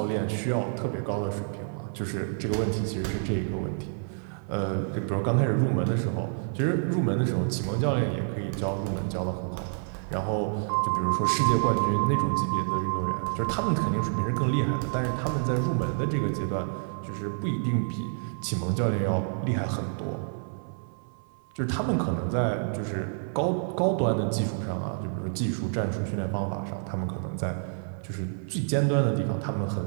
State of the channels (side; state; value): left; silent; 59 dB below the other